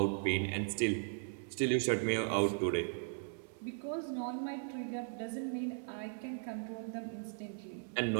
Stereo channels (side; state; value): left; silent; 53 dB below the other